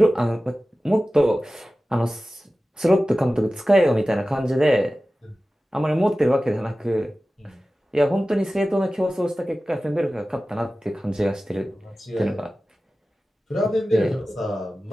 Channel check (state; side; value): normal; both; correlation 0.96